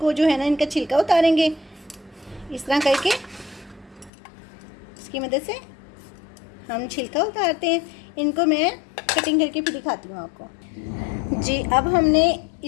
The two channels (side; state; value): right; drops out; at 4.1 s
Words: जो है ना इनका छिलका उतारेंगे इस तरह करके। इसकी मदद से हम छिलका उतारते हैं। इनको मैं कटिंग करके फिर दिखाती हूँ आपको जी। अब हमने